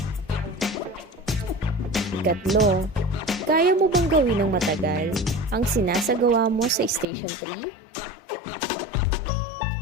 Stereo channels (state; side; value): drops out; right; at 7.1 s